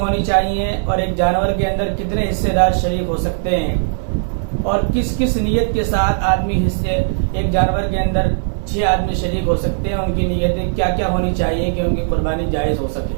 چاہیے اور ایک جانور کے اندر کتنے حصے دار شریک ہو سکتے ہیں اور کس کس نیت کے ساتھ آدمی حصے ایک جانور کے اندر 6 آدمی شریک ہو سکتے ہیں، ان کی نیتیں کیا کیا ہونی چاہیے کہ ان کی قربانی جائز ہو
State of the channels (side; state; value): left; silent; digital silence